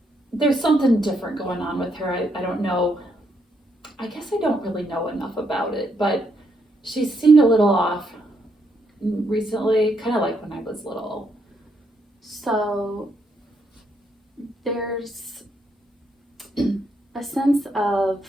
There's something different going on with her. I don't know. I guess I don't really know enough about it, but she seemed a little off recently, kind of like when I was little. So there's a sense of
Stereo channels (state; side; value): normal; both; correlation 0.76